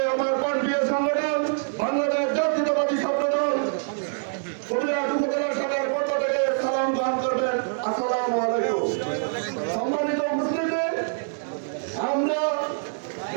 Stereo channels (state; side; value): silent; left; 62 dB below the other